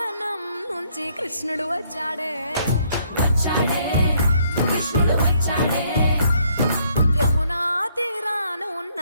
నుంచి కృష్ణుడు వచ్చాడే కృష్ణుడు వచ్చాడే యమునా తీరాన ఉన్న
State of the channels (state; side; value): inverted; both; correlation -0.68